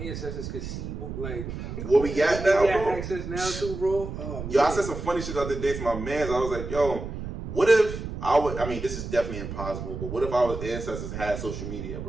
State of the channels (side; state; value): right; noise; rumble, 7 dB below the sound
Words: ancestors could see what we got now, we got bro. access now too, bro. Oh, yo, I said some funny shit the other day to my mans. I was like, yo, what if I mean, this is definitely impossible, but what if our ancestors had social media,